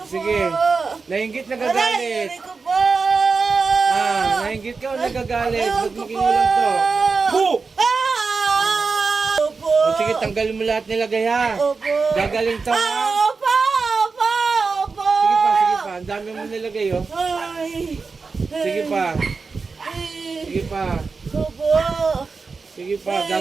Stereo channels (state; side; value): quieter; left; 4.6 dB